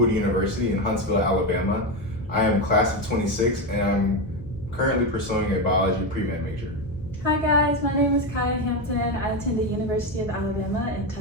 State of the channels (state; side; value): noise; left; hum, 18 dB below the sound